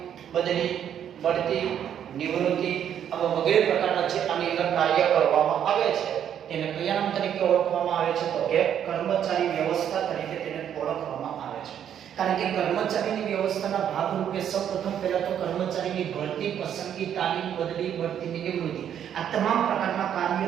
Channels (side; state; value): left; quieter; 9.4 dB